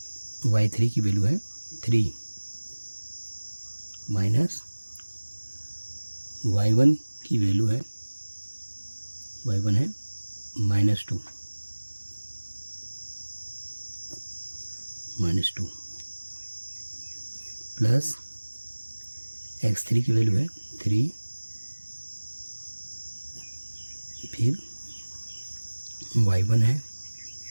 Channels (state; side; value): inverted; both; correlation -1.00